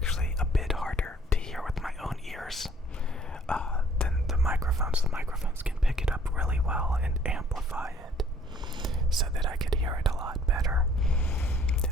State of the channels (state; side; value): normal; both; correlation 0.58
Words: a bit harder to hear with my own ears than the microphones. The microphones can pick it up really well and amplify it so that I could hear it a lot better